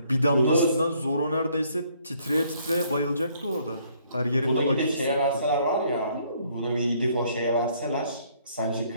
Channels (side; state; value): both; inverted; correlation -0.65